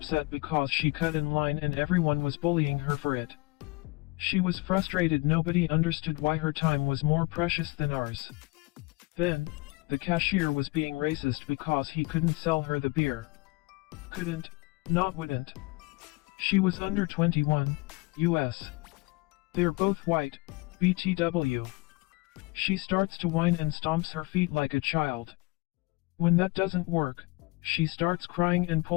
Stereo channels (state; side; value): quieter; right; 25.3 dB